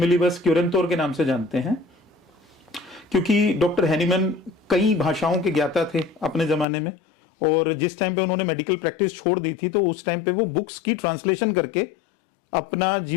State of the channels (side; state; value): right; drops out; at 6.7 s